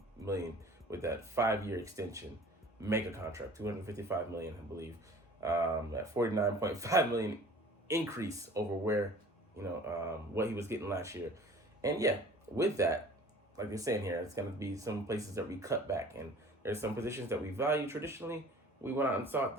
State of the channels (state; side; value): normal; both; correlation 0.46